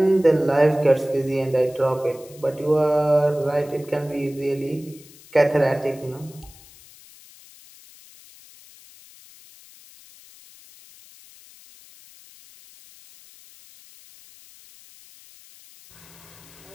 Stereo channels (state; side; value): noise; left; hiss, 23 dB below the sound